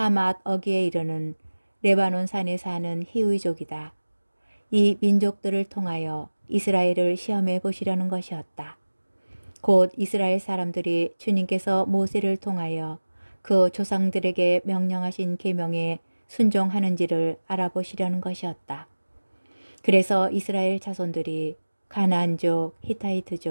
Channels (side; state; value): both; inverted; correlation -1.00